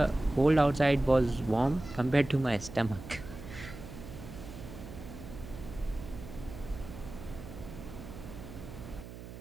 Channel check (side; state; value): right; noise; hum, 13 dB below the sound